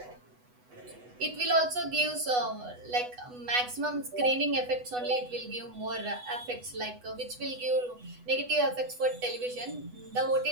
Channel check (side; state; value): left; late; 8.1 ms